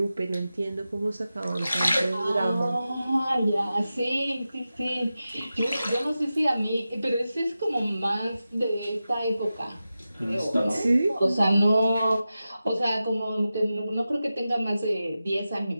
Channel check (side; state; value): both; inverted; correlation -0.93